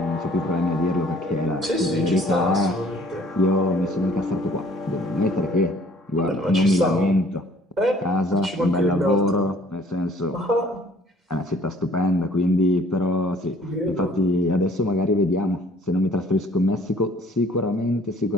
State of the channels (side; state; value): both; normal; correlation 0.56